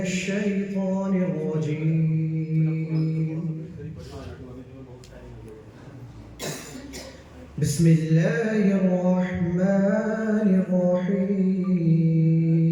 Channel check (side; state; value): both; identical; correlation 1.00